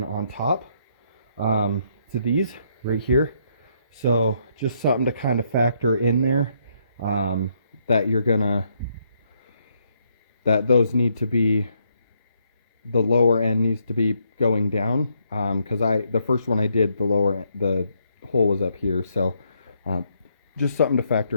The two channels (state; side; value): inverted; both; correlation -0.73